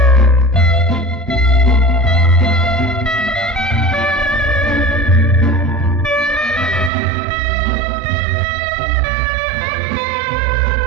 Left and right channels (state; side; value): drops out; left; at 6.9 s